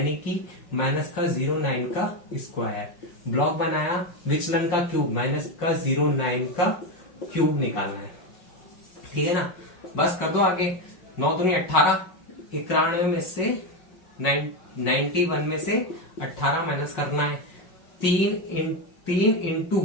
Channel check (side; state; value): right; late; 5.4 ms